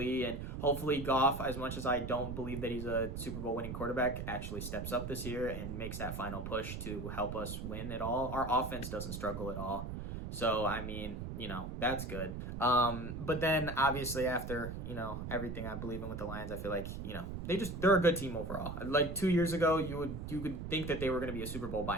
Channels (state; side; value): noise; right; rumble, 6 dB below the sound